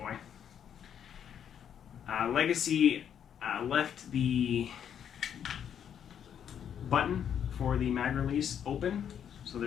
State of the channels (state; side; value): quieter; right; 8.7 dB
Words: Legacy left the button for the mag release open, so